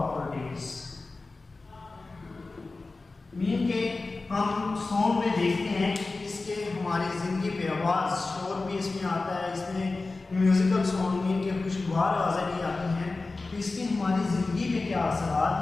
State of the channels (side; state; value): right; quieter; 3.5 dB